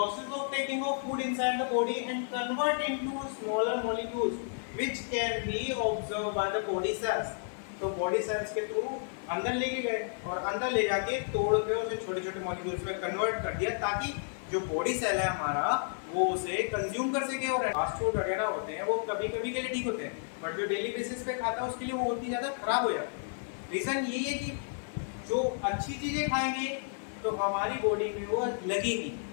of taking of food inside the body and convert into smaller molecules which can be observed by the body cells। तो बॉडी सेल्स के थ्रू अंदर लेके गए और अंदर ले जाके तोड़ के उसे छोटे छोटे मॉलिक्यूल्स में कन्वर्ट कर दिया, ताकि जो बॉडी सेल है हमारा वो उसे कंज्यूम कर सके। और फास्ट फूड वगैरह होते हैं वो कभी कभी के लिए ठीक होते हैं, बट जो डेली बेसिस पे खाता है उसके लिए वो उतनी ज्यादा खराब हो जाते हैं। रीजन यही है कि जो अच्छी चीजें खाएंगे तो हमारी बॉडी में वो लगेगी,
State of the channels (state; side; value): silent; right; 57 dB below the other